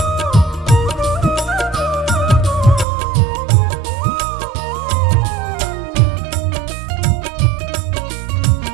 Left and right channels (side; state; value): left; drops out; at 2.9 s